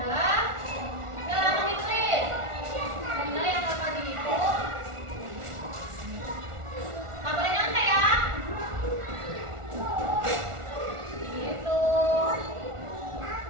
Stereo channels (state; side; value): late; left; 1.4 ms